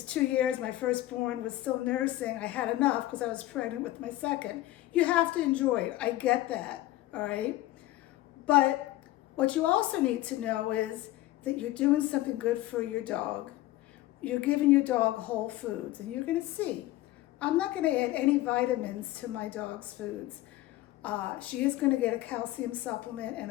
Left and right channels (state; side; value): quieter; right; 16.1 dB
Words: 2 years, my firstborn was still nursing. I had enough because I was pregnant with my second. You have to enjoy it. I get that, all right? But what you also need to know is that you're doing something good for your dog. You're giving your dog whole foods, and you're gonna see. I'm not gonna add any vitamins to my dog's foods. She is gonna get a calcium supplement and